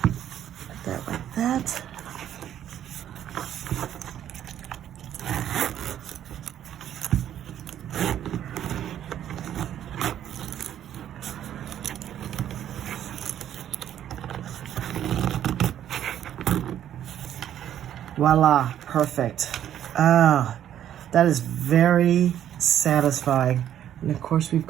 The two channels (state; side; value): quieter; left; 10.7 dB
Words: put that like that. Voila, perfect. Ah. That is very satisfying. And of course, we've